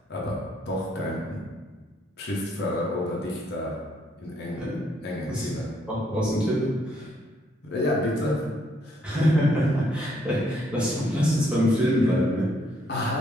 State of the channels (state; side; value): normal; both; correlation 0.70